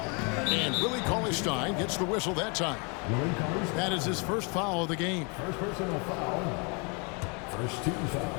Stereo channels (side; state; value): right; quieter; 33.6 dB